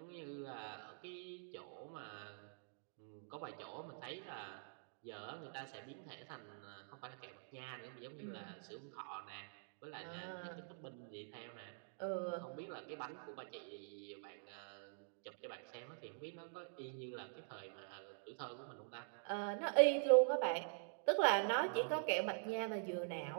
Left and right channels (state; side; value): silent; left; digital silence